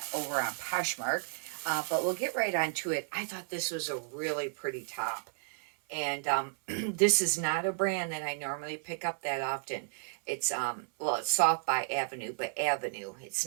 over on Poshmark. But we'll get right on to it. I thought this was a really pretty top. And this is not a brand that I normally pick up that often. It's well, it's Soft by Avenue, but Avenue. It's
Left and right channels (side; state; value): left; silent; 56 dB below the other